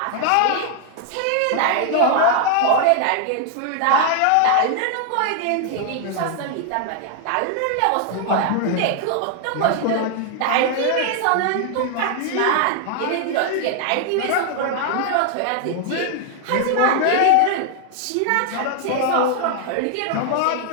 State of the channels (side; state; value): both; different; correlation 0.00